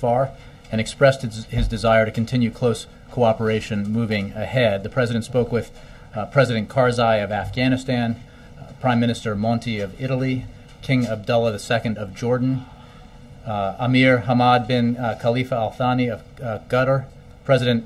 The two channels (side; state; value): both; identical; correlation 1.00